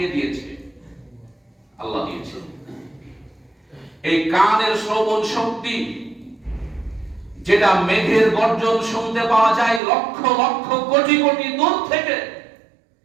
দিয়েছে? আল্লাহ দিয়েছে। এই কানের শ্রবণ শক্তি, যেটা মেঘের গর্জন শুনতে পাওয়া যায় লক্ষ লক্ষ কোটি কোটি দূর থেকে,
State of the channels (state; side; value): drops out; left; at 9.8 s